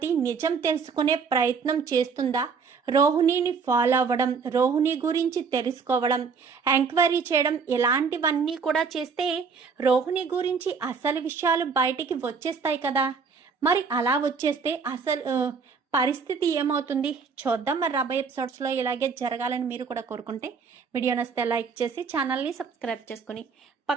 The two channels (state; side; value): quieter; left; 5.5 dB